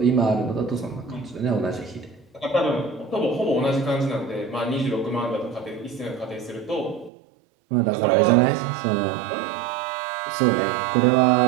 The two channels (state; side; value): drops out; left; at 7.1 s